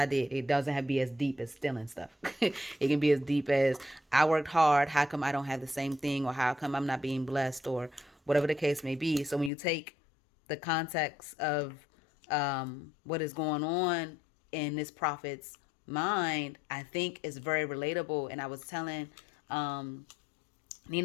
did. It doesn't have to be as deep as stealing stuff. It can be as deep as I worked hard. How come I don't have the same thing, or how come I'm not being blessed, or whatever the case may be. So when you take the context of what is going on in this prophet's mind, I think is very relatable. And I was telling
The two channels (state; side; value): drops out; right; at 9.5 s